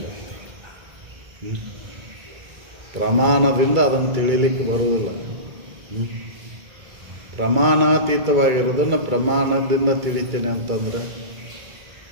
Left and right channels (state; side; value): late; left; 1.8 ms